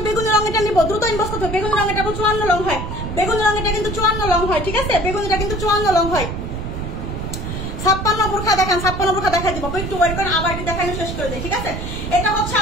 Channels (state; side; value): noise; right; rumble, 5 dB below the sound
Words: বেগুনি রঙেরটা নিব, দ্রুত ইনবক্স করতে। বেগুনি রঙেরটা 54 লং হয়, বেগুনি রঙেরটা কিন্তু 54 লং হয়, ঠিক আছে। বেগুনিটা কিন্তু 54 লং হয়। 56 বোরখা দেখেন, 56 বোরখা দেখা দিব, একটু ওয়েট করেন, আবার কি দেখানো শেষ করে দেই, ঠিক আছে। এটা হচ্ছে